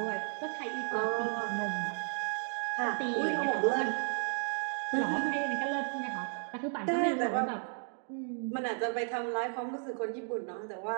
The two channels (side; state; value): left; silent; 55 dB below the other